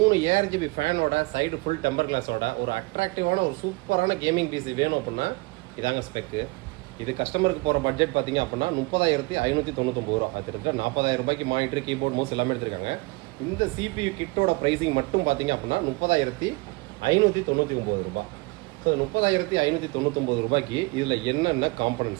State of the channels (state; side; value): quieter; left; 25.5 dB